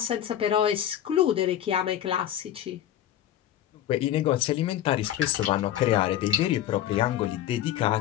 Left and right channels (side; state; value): right; quieter; 11.5 dB